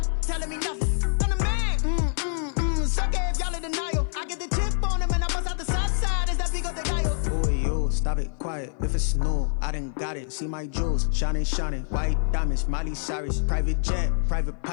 telling me nothing. I'm the man. Suck it if y'all in denial. I get the chip on them and I bust out the south side. Is that Vigo de Gallo? Boy, you stop it, quiet. If it's new, I done got it. See my jewels, shining, shining. White diamonds, Miley Cyrus. Private jet, private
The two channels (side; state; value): right; silent; 55 dB below the other